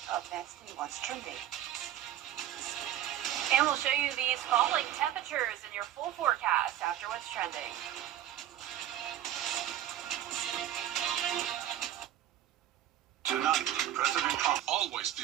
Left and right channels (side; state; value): left; quieter; 12.0 dB